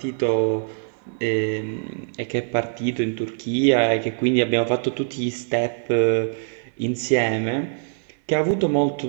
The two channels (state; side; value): silent; left; digital silence